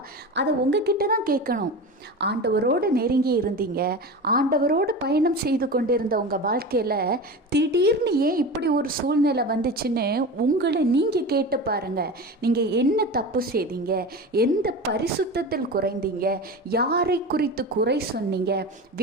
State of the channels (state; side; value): normal; both; correlation 0.28